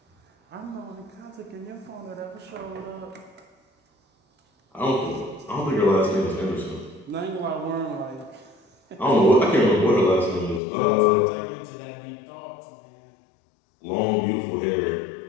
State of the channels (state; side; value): drops out; right; at 10.6 s